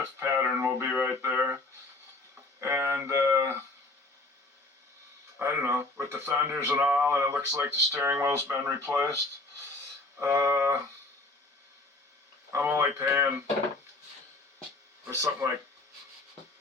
pattern will be right there, and I don't know, with the fenders and all, and it looks like the steering wheel's been replaced. I'm only paying for something like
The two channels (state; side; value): quieter; right; 3.0 dB